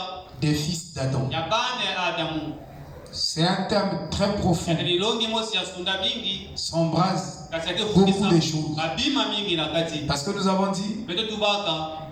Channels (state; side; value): identical; both; correlation 1.00